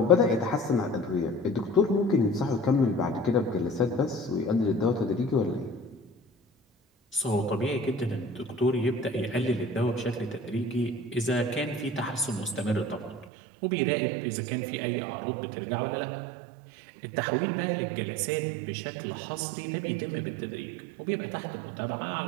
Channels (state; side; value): drops out; left; at 13.2 s